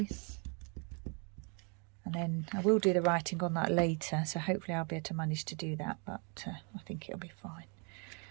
and then I will do the writing on that later, so hopefully I'll be able to manage to do that, but I think it'll be fine.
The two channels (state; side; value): quieter; left; 36.2 dB